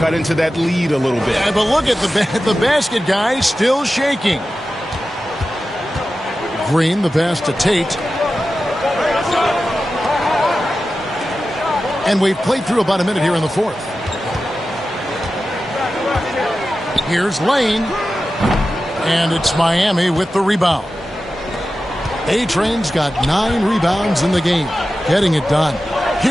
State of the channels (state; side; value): normal; both; correlation 0.93